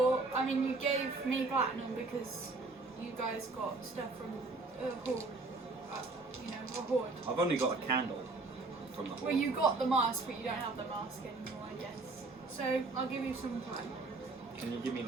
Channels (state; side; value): quieter; left; 3.5 dB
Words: I mean, you gave me platinum because you guys got stuff from a horde. A horde. I've only got a candle from the horde. Well, you got the mask, but you don't have the mask anymore, I guess. So, I'll give you some time. Can you give me